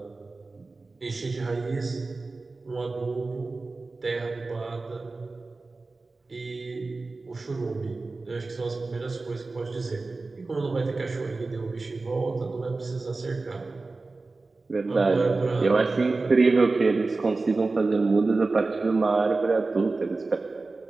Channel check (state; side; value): quieter; left; 3.6 dB